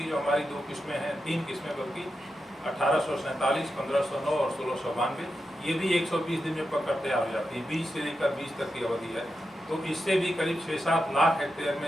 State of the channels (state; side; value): normal; both; correlation 0.88